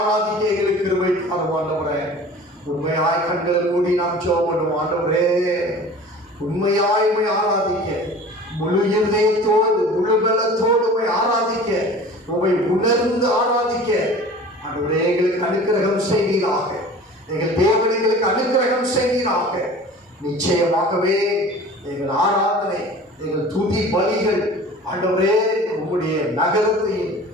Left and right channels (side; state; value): both; normal; correlation 0.42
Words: எங்களுக்கு கிருபை தாரும் ஆண்டவரே. உண்மையாய் கண்களை மூடி நாம் ஜெபம் பண்ணுவோம். ஆண்டவரே, உண்மையாய் உம்மை ஆராதிக்க, முழு இதயத்தோடு முழு பலத்தோடு உம்மை ஆராதிக்க, உம்மை உணர்ந்து ஆராதிக்க ஆண்டவரே எங்களுக்கு அனுக்கிரகம் செய்வீராக. எங்கள் தேவன் எங்களுக்கு அனுக்கிரகம் செய்வீராக. நிச்சயமாகவே எங்கள் ஆராதனை, எங்கள் துதி பலிகள் ஆண்டவரே உம்முடைய நகரத்தையும்